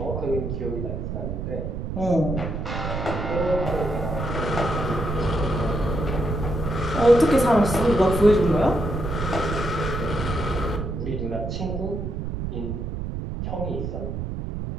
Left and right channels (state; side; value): noise; right; rumble, 4 dB below the sound